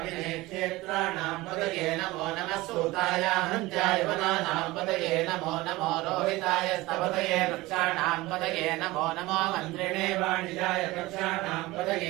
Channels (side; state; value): left; quieter; 19.8 dB